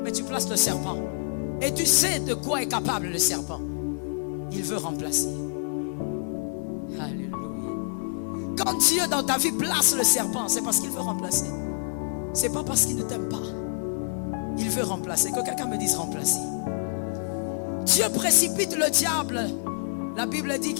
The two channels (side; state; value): right; silent; digital silence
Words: Mais tu places le serpent. Et tu sais de quoi est capable le serpent. Il veut remplacer. Alléluia. Quand Dieu dans ta vie place le serpent, c'est parce qu'il veut remplacer. C'est pas parce qu'il ne t'aime pas. Il veut remplacer. Que quelqu'un me dise remplacer. Dieu précipite le diable. La Bible dit